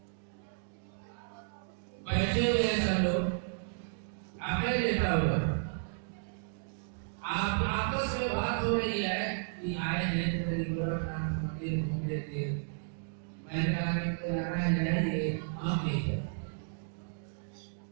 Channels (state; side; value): silent; left; digital silence